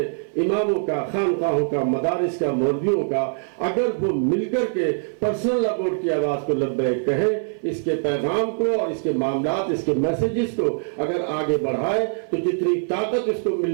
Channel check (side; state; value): left; silent; 56 dB below the other